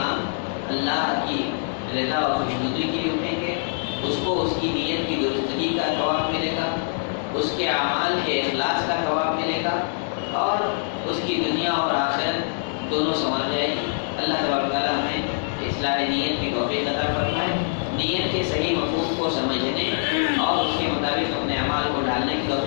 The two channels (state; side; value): silent; right; 62 dB below the other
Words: اللہ کی رضا اور خوشنودی کے لیے اٹھیں گے، اس کو اس کی نیت کی درستگی کا ثواب ملے گا، اس کے اعمال کے اخلاص کا ثواب ملے گا، اور اس کی دنیا اور آخرت دونوں سنور جائے گی۔ اللہ تبارک تعالیٰ ہمیں اصلاح نیت کی توفیق عطا فرمائے، نیت کے صحیح مفہوم کو سمجھنے اور اس کے مطابق اپنے اعمال کو ڈالنے کی